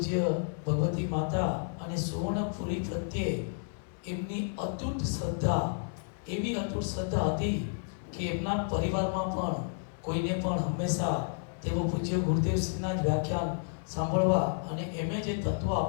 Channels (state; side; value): silent; right; digital silence